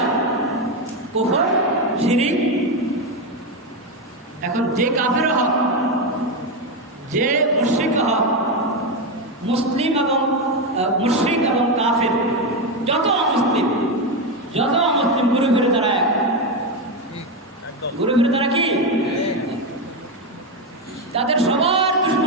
কুফর, শিরক। এখন যে কাফের হক, যে মুশরিক হক, মুসলিম এবং মুশরিক এবং কাফের, যত অমুসলিম ঘুরে ঘুরে তারা এক, ঘুরে ঘুরে তারা কি, তাদের সবার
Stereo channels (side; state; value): both; normal; correlation 0.10